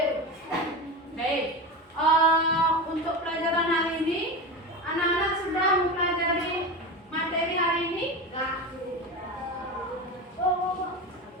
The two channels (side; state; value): both; normal; correlation 0.24